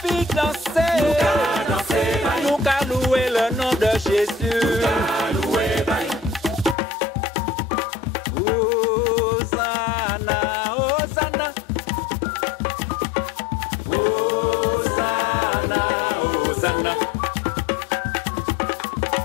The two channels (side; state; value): right; drops out; at 6.8 s